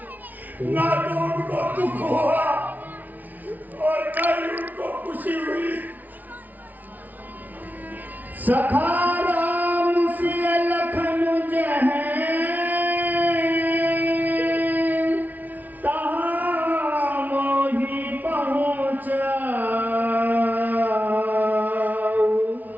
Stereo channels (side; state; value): left; late; 0.078 ms